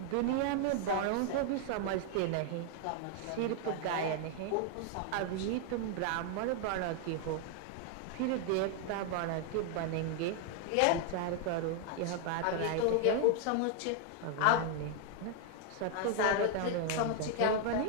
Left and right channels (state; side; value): different; both; correlation 0.00